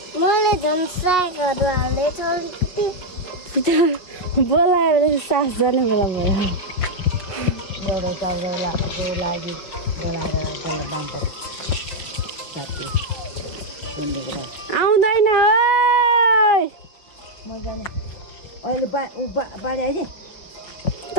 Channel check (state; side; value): late; right; 5.6 ms